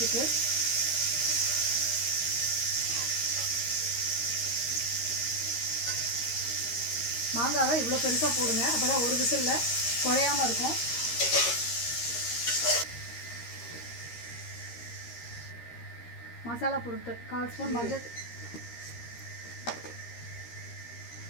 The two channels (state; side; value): late; right; 13 ms